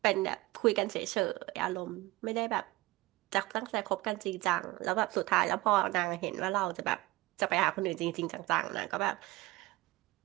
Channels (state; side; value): quieter; left; 19.8 dB